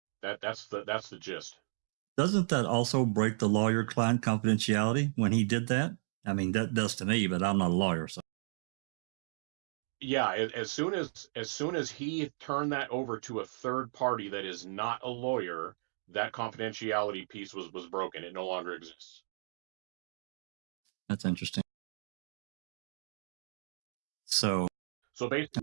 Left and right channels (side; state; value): left; silent; digital silence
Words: that's the gist. Doesn't that also break the lawyer-client confidentiality when he did that? I mean, that does to me, but I'm not a lawyer, so. Yeah, as soon as he turned that over to a third party that is not a lawyer, that confidentiality piece was broken. It no longer exists. That's interesting. So